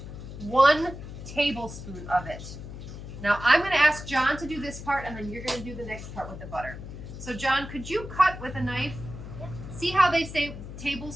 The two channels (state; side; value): noise; left; hum, 11 dB below the sound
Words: 1 tablespoon of it. Now, I'm going to ask John to do this part, and then you're going to do the next part with the butter. So, John, could you cut with a knife? Yep. See how they say